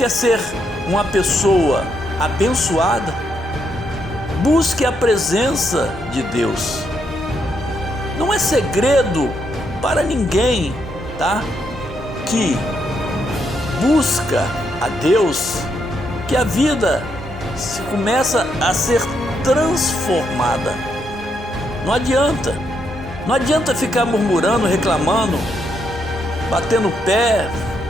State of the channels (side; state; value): both; normal; correlation 0.78